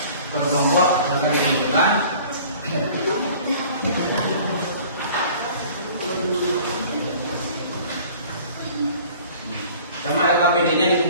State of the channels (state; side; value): inverted; both; correlation -0.48